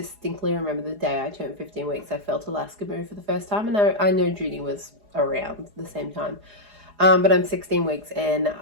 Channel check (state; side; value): late; left; 4.8 ms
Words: remember the day I turned 15 weeks, I felt Alaska move for the first time, and I know Judy was around the same time. But I'm 16 weeks and